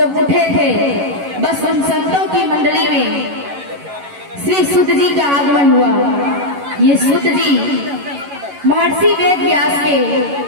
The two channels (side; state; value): left; late; 11 ms